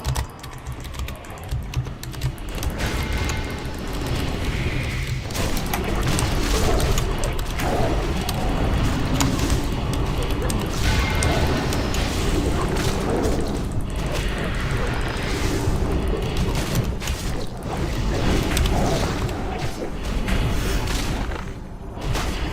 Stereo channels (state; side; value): identical; both; correlation 1.00